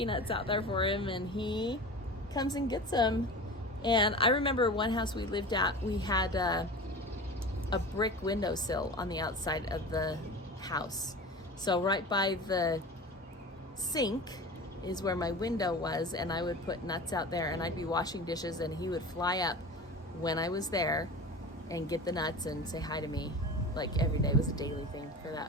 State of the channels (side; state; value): both; normal; correlation 0.33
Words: out there for him, and he comes and gets them. And I remember one house we lived at, we had a brick windowsill on the outside of the house. So right by the sink is where my window was, and I would put nuts out there, and I'd be washing dishes, and he would fly up when I was there and get the nuts and say hi to me. Like every day was a daily thing for that